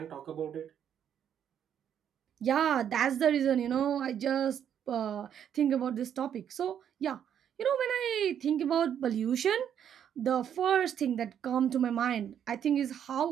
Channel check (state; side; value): quieter; left; 9.1 dB